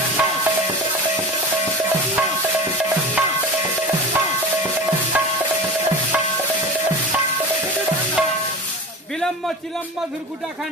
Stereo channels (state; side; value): normal; both; correlation 0.31